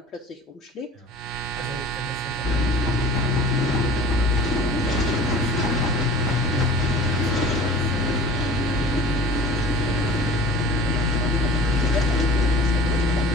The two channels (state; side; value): normal; both; correlation 0.43